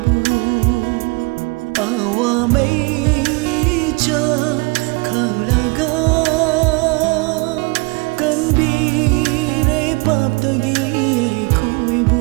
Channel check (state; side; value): quieter; left; 28.4 dB